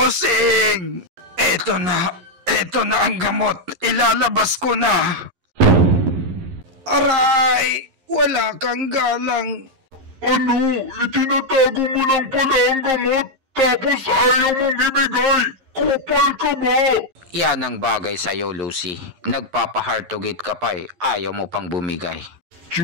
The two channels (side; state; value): left; late; 11 ms